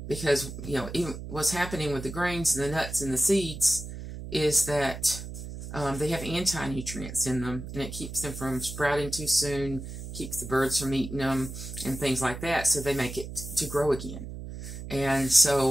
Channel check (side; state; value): right; noise; hum, 9 dB below the sound